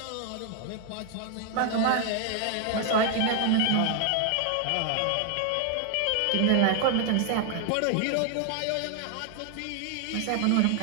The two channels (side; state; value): both; different; correlation 0.00